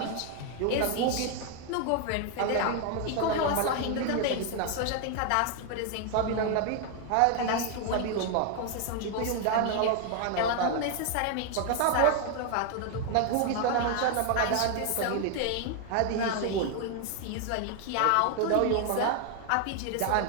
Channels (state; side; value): different; both; correlation 0.00